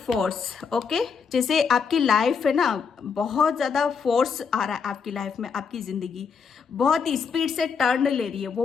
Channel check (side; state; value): right; quieter; 6.0 dB